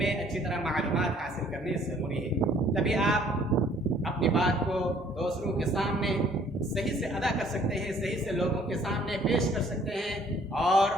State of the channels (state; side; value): normal; both; correlation 0.59